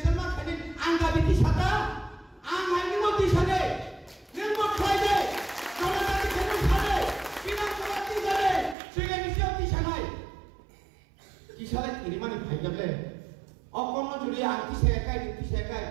ma khani anga biti sata ang haini moti sade nemo khaibe kala ta khani sade pina kolati sade sege nisoti sanai kisale ini mani bhai jable অকর্ণ যদি আংটি শেখায়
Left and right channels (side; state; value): left; drops out; at 8.8 s